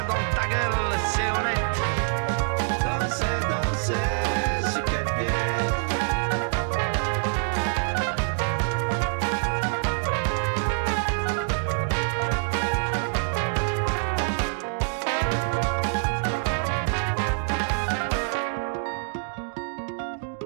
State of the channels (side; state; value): left; silent; digital silence